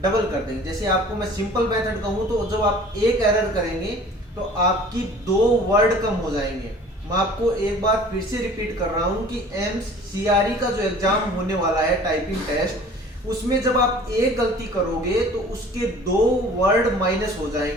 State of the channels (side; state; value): both; normal; correlation 0.47